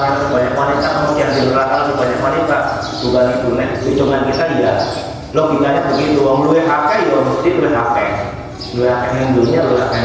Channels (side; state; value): both; identical; correlation 1.00